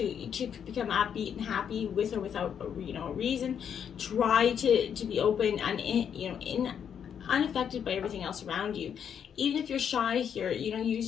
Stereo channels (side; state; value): right; quieter; 8.2 dB